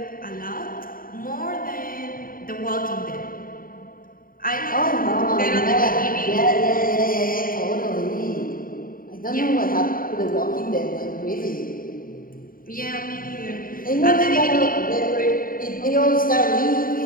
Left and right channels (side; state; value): right; late; 0.41 ms